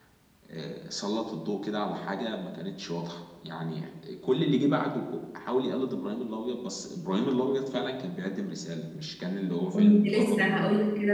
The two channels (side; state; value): both; identical; correlation 1.00